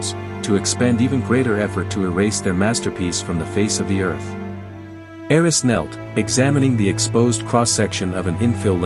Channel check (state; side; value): identical; both; correlation 1.00